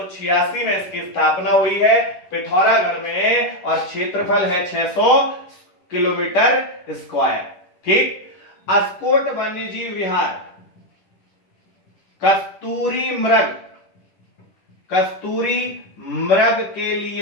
में इसकी स्थापना हुई है पिथौरागढ़ में और क्षेत्रफल है 600 किलोमीटर स्क्वायर। ठीक, अस्कोट वन्यजीव विहार कस्तूरी मृग के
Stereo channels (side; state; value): right; late; 10 ms